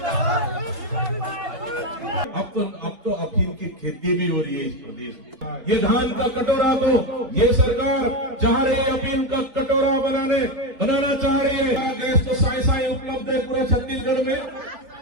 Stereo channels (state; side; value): late; left; 3.9 ms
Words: अब तो अफीम की खेती भी हो रही है इस प्रदेश में। ये धान का कटोरा तो ये सरकार चाह रही है अफीम का कटोरा बनाना चाह रही है। गैस तो साई उपलब्ध है पूरे छत्तीसगढ़ में।